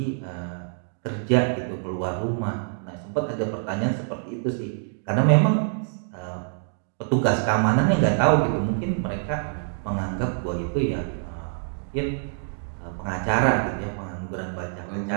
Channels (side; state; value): left; silent; digital silence